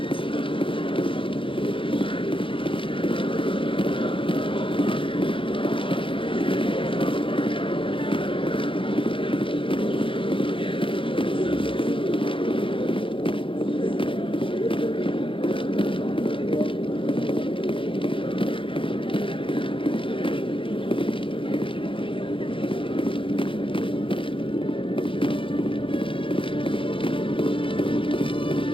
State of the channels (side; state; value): right; late; 0.25 ms